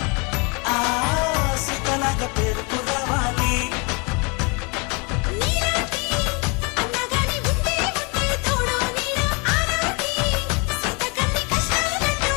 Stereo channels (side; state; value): right; quieter; 31.3 dB